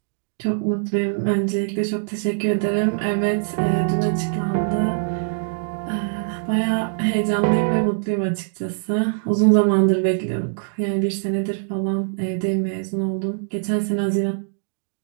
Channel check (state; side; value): silent; left; digital silence